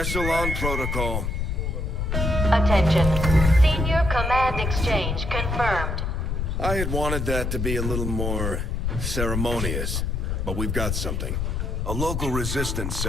Protocol. Attention. Senior command exchange confirmed. I had wanted that to be a little more ceremonious, but we've got something. A local resistance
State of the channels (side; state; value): left; noise; rumble, 1 dB below the sound